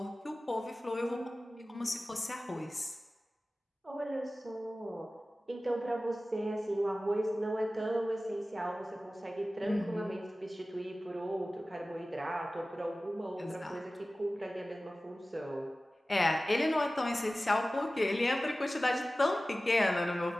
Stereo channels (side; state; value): both; normal; correlation 0.97